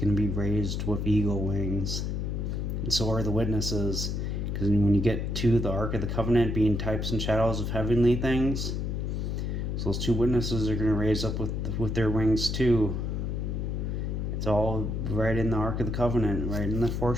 to be raised with eagle wings. And so are the witnesses. Because when you get to the Ark of the Covenant being types and shadows of heavenly things, so those two witnesses are going to raise up with their wings too. It's all right in the Ark of the Covenant, right in the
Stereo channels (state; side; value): noise; left; hum, 1 dB below the sound